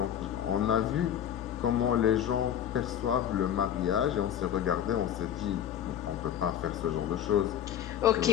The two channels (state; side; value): quieter; right; 10.1 dB